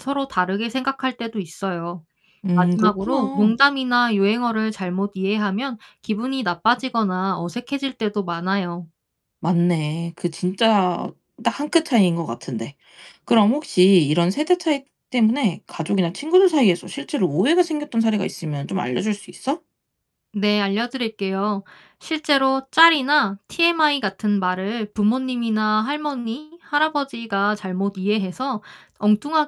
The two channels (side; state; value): both; identical; correlation 1.00